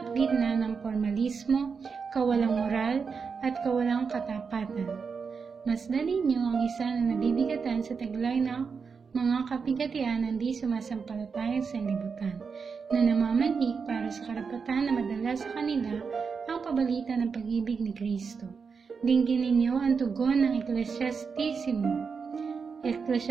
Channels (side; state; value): left; quieter; 5.5 dB